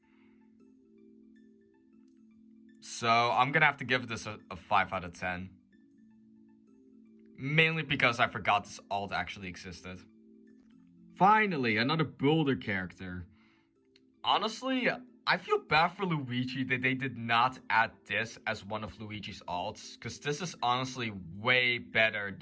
So, I'm gonna have to give this a 5 out of 10. Mainly because I forgot this alt actually existed. Finally, another Boulder character. Honestly, I feel bad for Luigi that they did not add this as one of Luigi's alts, because this is honestly way better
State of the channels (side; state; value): both; identical; correlation 1.00